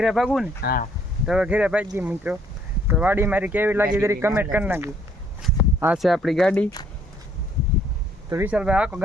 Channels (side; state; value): both; normal; correlation 0.64